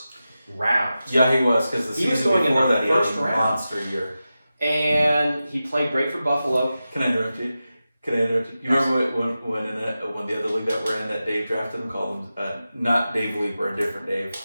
round. Yeah, he was, because the season before that he had a monster year. And he played great for Buffalo. Can I interrupt you? You remember when the other league that we're in, that Dave drafted him, called him, not Dave Leeper, a different Dave,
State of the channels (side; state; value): both; inverted; correlation -0.93